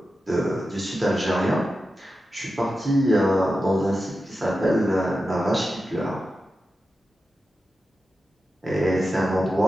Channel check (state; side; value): normal; both; correlation 0.91